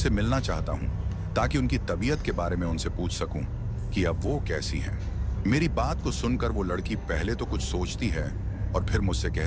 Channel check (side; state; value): both; identical; correlation 1.00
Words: मिलना चाहता हूँ ताकि उनकी तबीयत के बारे में उनसे पूछ सकूं कि अब वो कैसी हैं। मेरी बात को सुनकर वो लड़की पहले तो कुछ सोचती है और फिर मुझसे